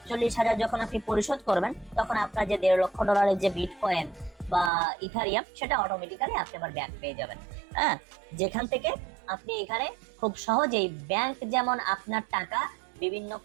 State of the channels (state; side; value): drops out; left; at 4.7 s